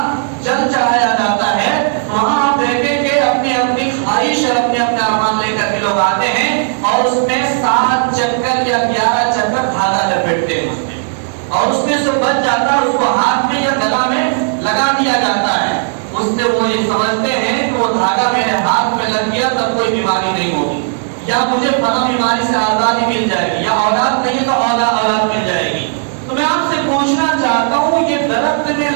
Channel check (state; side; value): silent; left; digital silence